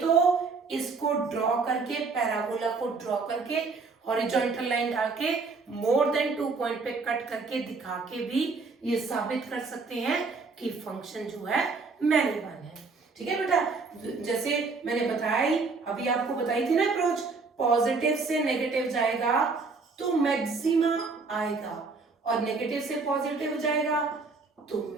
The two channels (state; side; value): quieter; left; 4.3 dB